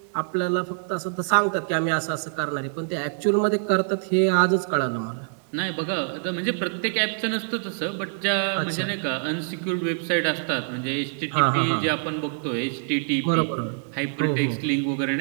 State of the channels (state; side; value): silent; left; digital silence